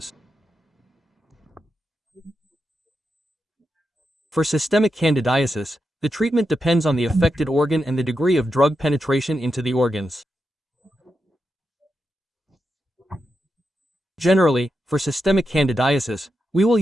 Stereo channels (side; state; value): both; normal; correlation 0.87